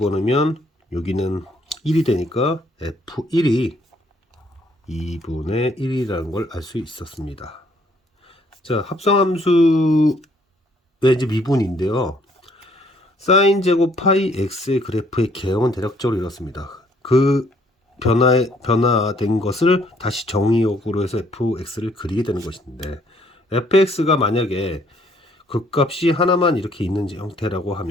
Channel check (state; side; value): normal; both; correlation 0.65